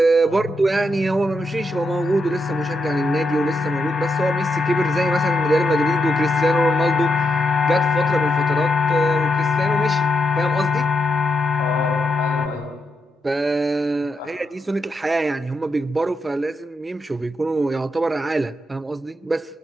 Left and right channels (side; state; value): both; normal; correlation 0.83